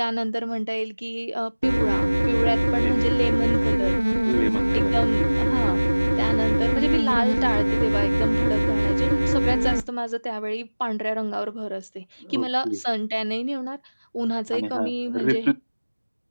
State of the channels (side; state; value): both; inverted; correlation -1.00